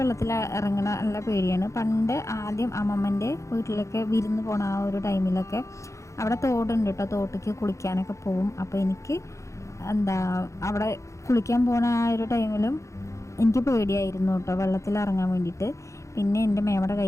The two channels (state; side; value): late; right; 0.15 ms